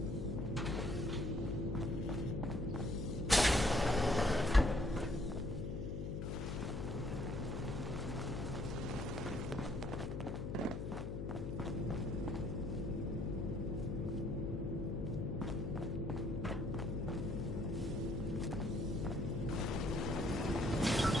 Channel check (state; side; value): noise; left; hum, 3 dB below the sound